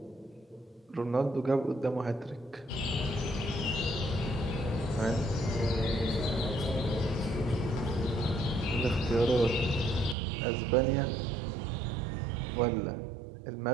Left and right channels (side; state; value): left; drops out; at 10.2 s